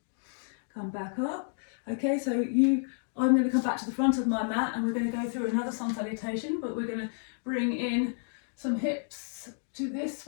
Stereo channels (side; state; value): right; silent; digital silence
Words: Come back up. Okay, so I'm going to come back to the front of my mat, and we're going to go through another sun salutation, but we're going to bring in some hips to this